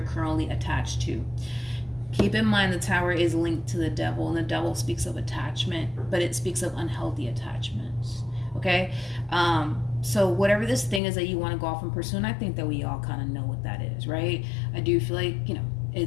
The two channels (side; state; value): right; drops out; at 11.0 s